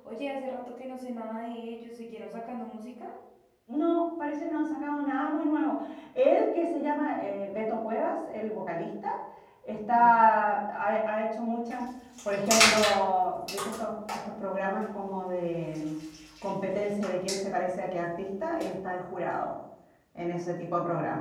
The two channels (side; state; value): both; identical; correlation 1.00